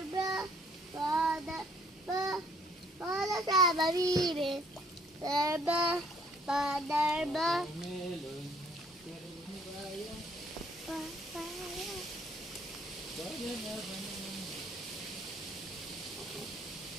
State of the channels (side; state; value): both; normal; correlation 0.62